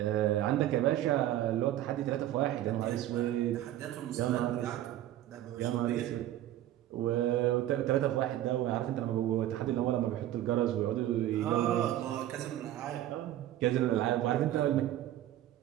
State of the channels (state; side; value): quieter; left; 13.2 dB